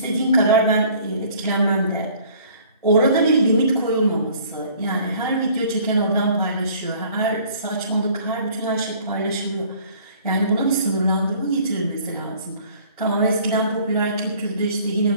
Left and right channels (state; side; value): inverted; both; correlation -0.54